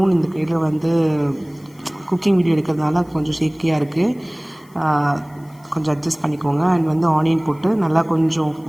இந்த கையில் குக்கிங் வீடியோ எடுக்கிறதுனால கொஞ்சம் ஷேக்கியாக இருக்குது. கொஞ்சம் அட்ஜஸ்ட் பண்ணிக்கோங்க. அண்ட் ஆனியன் போட்டு நல்லா கொஞ்சம்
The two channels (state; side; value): noise; left; hiss, 30 dB below the sound